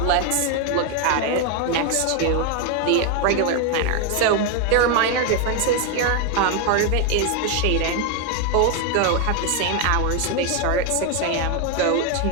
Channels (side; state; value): both; different; correlation 0.01